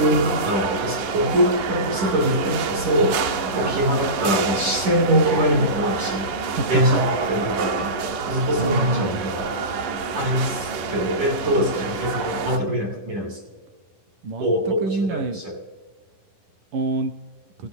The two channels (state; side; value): late; left; 10 ms